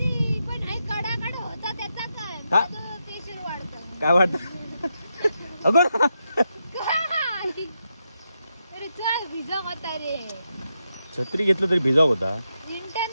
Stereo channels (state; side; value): inverted; both; correlation -0.85